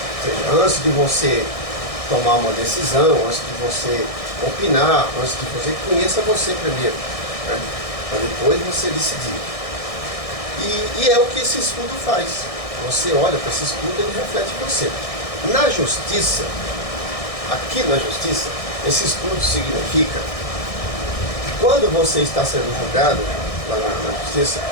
Ou seja, antes de você tomar uma decisão, antes de você opinar, antes de você, conheça você primeiro, né? Para depois você decidir. E é o que esse escudo faz. Você olha para esse escudo e ele reflete você. Na justiça, aqui na justiça, esse escudo significa que quando você está sendo julgado lá na justiça,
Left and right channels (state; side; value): late; right; 1.6 ms